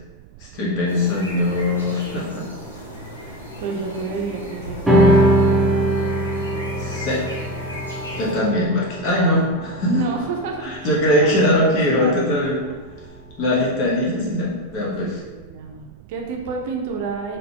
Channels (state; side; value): noise; right; rumble, 22 dB below the sound